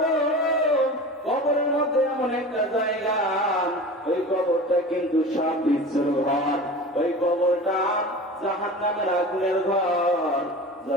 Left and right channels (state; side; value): normal; both; correlation 0.34